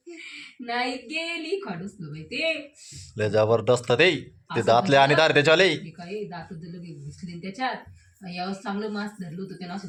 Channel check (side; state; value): both; identical; correlation 1.00